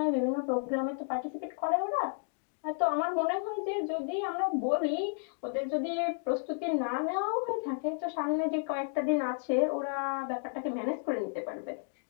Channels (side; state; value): right; silent; digital silence